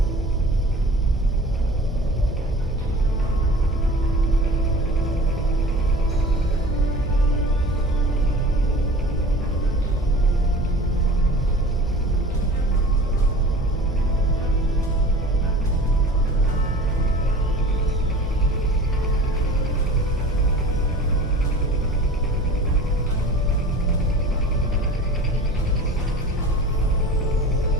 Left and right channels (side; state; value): both; normal; correlation 0.40